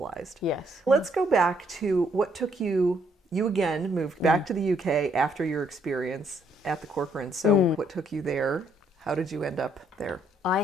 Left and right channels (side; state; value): both; normal; correlation 0.70